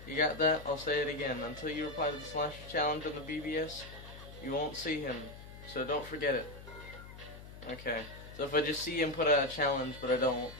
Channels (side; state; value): left; noise; hum, 15 dB below the sound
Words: You got that? I'll say it again. Until you reply to the Slasher challenge on the BBS, you won't see him. So don't forget it. Okay. So if I just see him put out a challenge but I don't